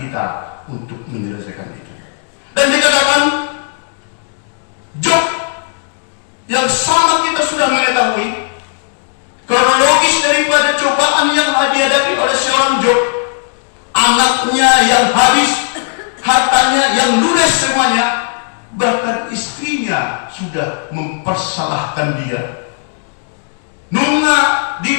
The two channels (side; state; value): right; silent; digital silence